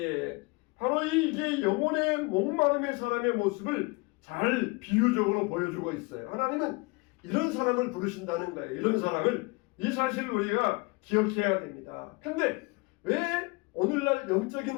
바로 이게 영혼의 목마름의 사람의 모습을 잘 비유적으로 보여주고 있어요. 하나님은 이런 사람을 부르신다는 거예요. 이런 사람을, 이 사실을 우리가 기억해야 됩니다. 근데 왜 오늘날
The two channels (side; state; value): right; quieter; 26.4 dB